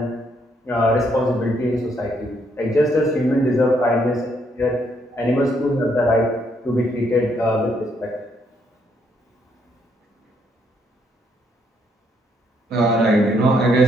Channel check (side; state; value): both; normal; correlation 0.72